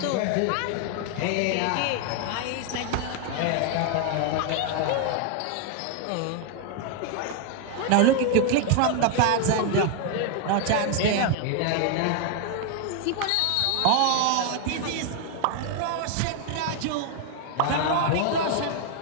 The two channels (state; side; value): different; both; correlation 0.00